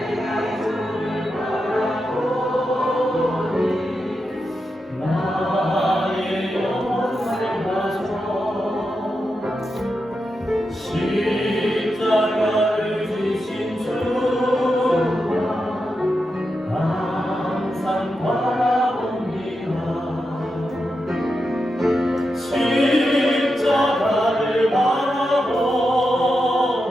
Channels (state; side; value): normal; both; correlation 0.88